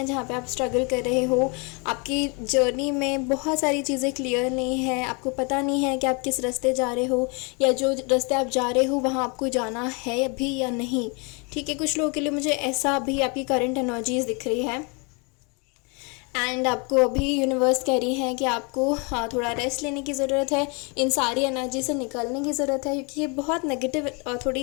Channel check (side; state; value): right; quieter; 32.3 dB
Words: जहाँ पे आप स्ट्रगल कर रहे हो। आपकी जर्नी में बहुत सारी चीज़ें क्लियर नहीं है, आपको पता नहीं है कि आप किस रास्ते जा रहे हो, या जो रास्ते आप जा रहे हो वहाँ आपको जाना है अभी या नहीं। ठीक है, कुछ लोगों के लिए मुझे ऐसा भी आपकी करंट एनर्जीज दिख रही है। एंड आपको अभी यूनिवर्स कह रही है कि आपको थोड़ा रेस्ट लेने की ज़रूरत है, इन सारी एनर्जी से निकलने की ज़रूरत है, क्योंकि ये बहुत नेगेटिव